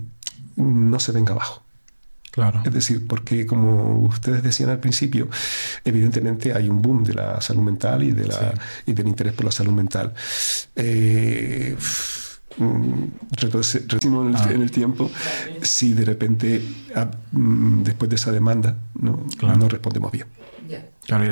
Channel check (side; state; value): both; inverted; correlation -1.00